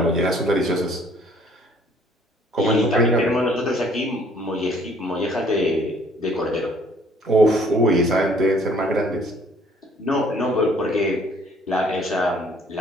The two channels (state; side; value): normal; both; correlation 0.59